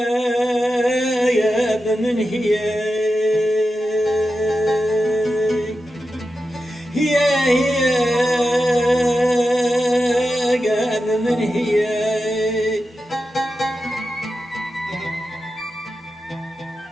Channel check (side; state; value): both; normal; correlation 0.91